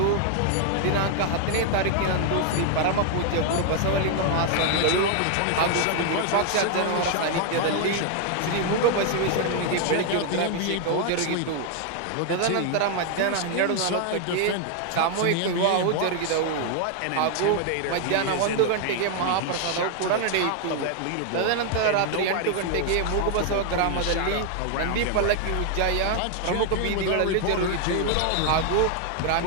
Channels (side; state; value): both; different; correlation 0.00